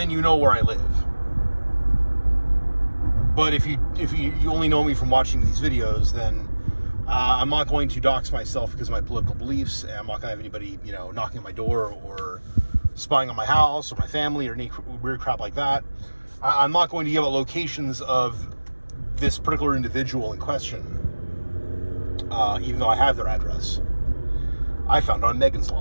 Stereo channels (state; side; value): inverted; both; correlation -1.00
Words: you know where I live. But if you only know me from watching these videos, then I'm not going to dox myself because of my political beliefs, and I'm not going to have anybody, knocking at my door or spying on my house or my family or any weird crap like that. I'm not going to give out locations of this particular individual in question. Even though I have their address. I found on Megan's